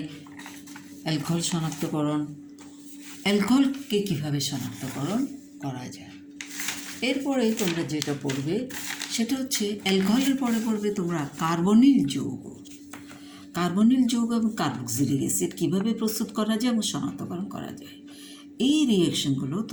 অ্যালকোহল শনাক্তকরণ, অ্যালকোহলকে কীভাবে শনাক্তকরণ করা যায়। এরপরে তোমরা যেটা পড়বে সেটা হচ্ছে অ্যালকোহলের পরে পড়বে তোমরা কার্বনিল যৌগ এবং কার্বক্সিলিক অ্যাসিড কীভাবে প্রস্তুত করা যায় এবং শনাক্তকরণ করা যায়। এই রিয়েকশনগুলো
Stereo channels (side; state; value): both; identical; correlation 1.00